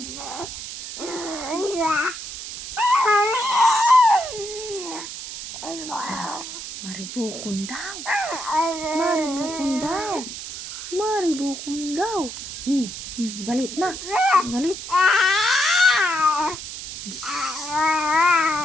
Maribukon daw. Maribukon daw. Maribukon daw. Galit na. Galit.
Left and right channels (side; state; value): right; noise; hiss, 9 dB below the sound